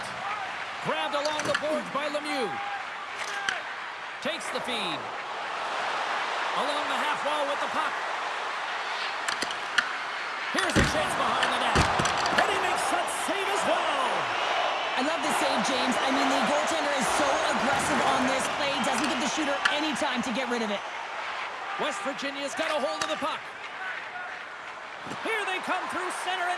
Grabbed along the boards by Lemieux. Takes the feed. Along the half wall with the puck. Here's a chance behind the net. And he makes that save as well. I love this save, James. I mean, the goaltender is so aggressive on this play. Doesn't give the shooter any time to get rid of it. West Virginia's got a hold of the puck. Here they come through center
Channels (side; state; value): both; identical; correlation 1.00